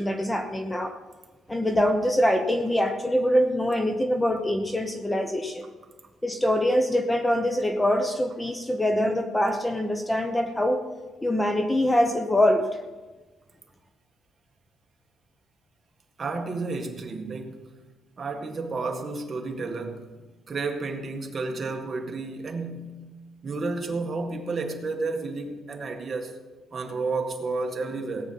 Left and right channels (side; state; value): both; normal; correlation 0.88